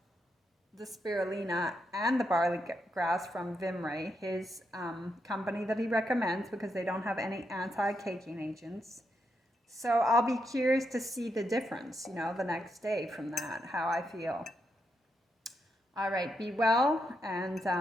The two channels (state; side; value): normal; both; correlation 0.81